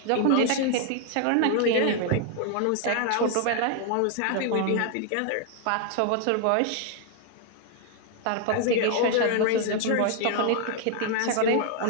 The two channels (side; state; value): both; different; correlation 0.00